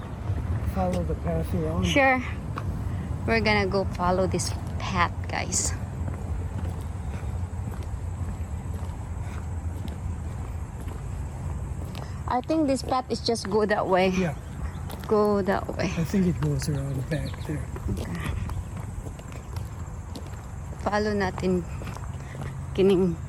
follow the path you're on? Sure. We're gonna go follow this path, guys. I think this path is just go that way. Yeah, Go that way. I think it goes around back there. Okay. Follow natin kining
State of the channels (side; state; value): both; identical; correlation 1.00